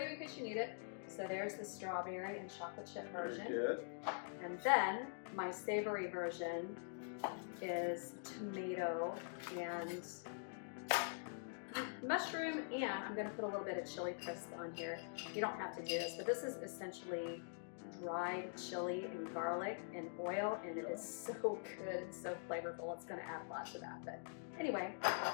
in case you need it. So there's the strawberry and chocolate chip version. Very good. And then my savory version is tomato and mushroom, and I'm gonna put a little bit of chili crisp on here. You don't have to do this, but this is essentially dried chili and garlic and oil, and it is so good and so flavorful. It's gonna add lots of that. But anyway,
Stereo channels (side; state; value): right; silent; digital silence